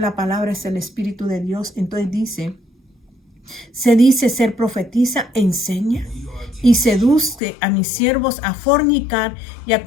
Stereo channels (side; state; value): right; drops out; at 7.4 s